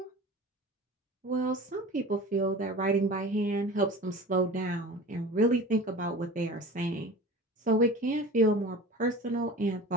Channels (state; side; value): normal; both; correlation 0.37